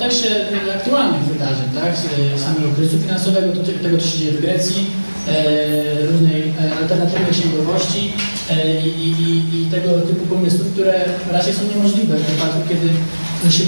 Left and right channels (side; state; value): both; inverted; correlation -1.00